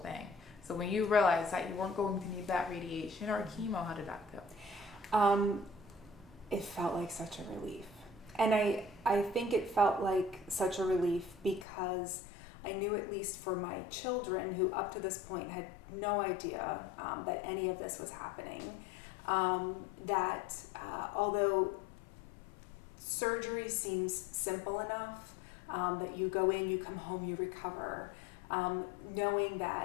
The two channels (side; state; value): right; drops out; at 11.7 s